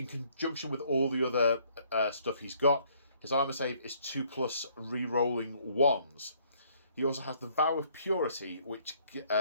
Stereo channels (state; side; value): inverted; both; correlation -0.64